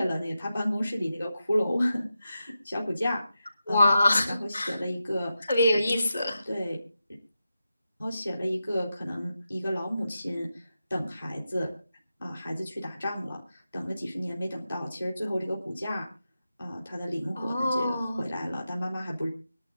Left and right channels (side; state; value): both; inverted; correlation -0.90